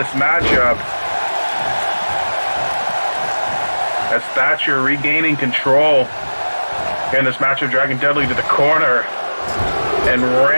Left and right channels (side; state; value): both; inverted; correlation -1.00